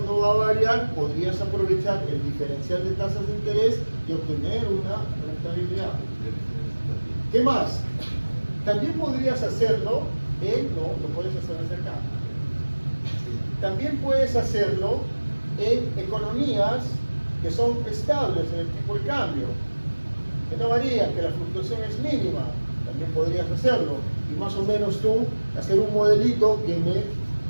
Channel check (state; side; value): inverted; both; correlation -1.00